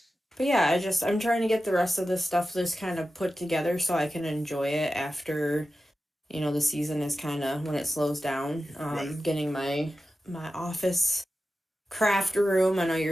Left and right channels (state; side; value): normal; both; correlation 0.93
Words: yeah, I'm trying to get the rest of this stuff just kind of put together so I can enjoy it after the season is kind of when it slows down. Right. Getting my office craft room. I know you